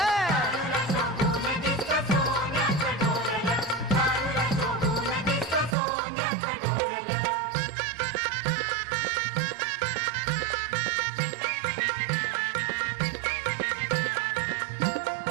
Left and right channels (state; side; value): drops out; left; at 5.8 s